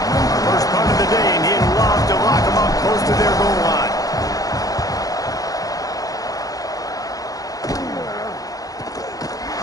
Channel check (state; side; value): late; right; 0.17 ms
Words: First punt of the day, and he'd love to lock them up close to their goal line.